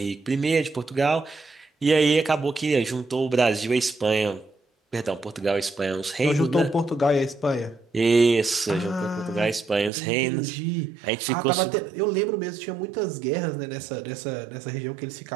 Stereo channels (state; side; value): drops out; left; at 9.9 s